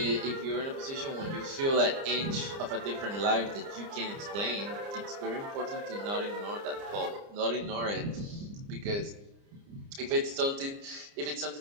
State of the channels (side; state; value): left; late; 30 ms